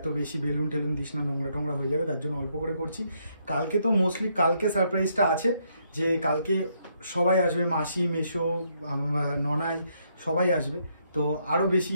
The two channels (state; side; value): inverted; both; correlation -0.74